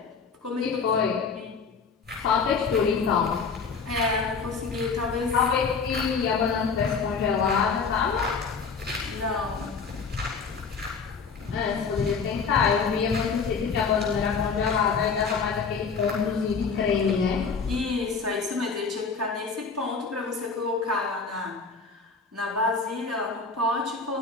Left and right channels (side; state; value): right; quieter; 5.2 dB